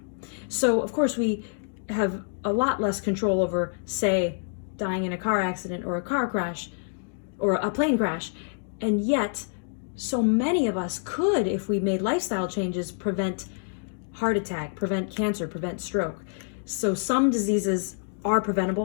So of course we have a lot less control over, say, dying in a car accident or a car crash or a plane crash, and yet so many of us could, if we made lifestyle changes, prevent heart attack, prevent cancer, prevent stroke. So some diseases are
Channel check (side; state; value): right; silent; digital silence